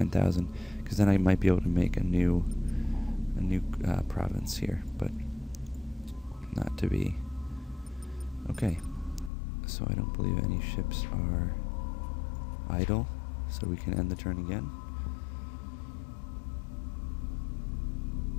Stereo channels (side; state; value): right; drops out; at 9.3 s